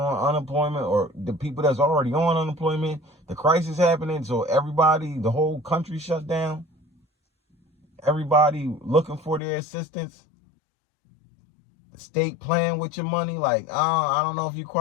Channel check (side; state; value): right; drops out; at 9.4 s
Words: unemployment, or the people that's already on unemployment. The crisis happening, so everybody, the whole country shut down. Everybody looking for their assistance. The state playing with your money, like, I don't know if you